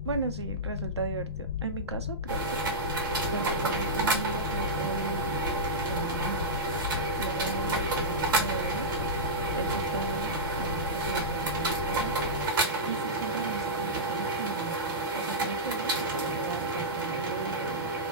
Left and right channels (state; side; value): normal; both; correlation -0.12